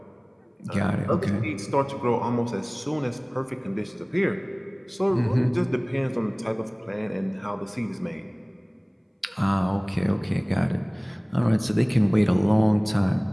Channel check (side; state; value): both; identical; correlation 1.00